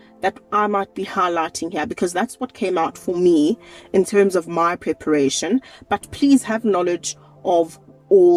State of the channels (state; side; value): identical; both; correlation 1.00